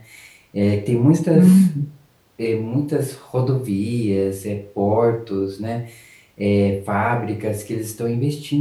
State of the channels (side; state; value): both; identical; correlation 1.00